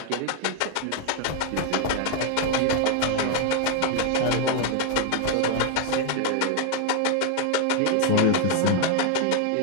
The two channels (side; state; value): both; different; correlation 0.00